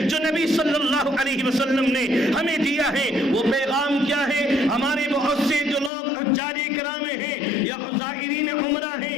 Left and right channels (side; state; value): right; drops out; at 5.9 s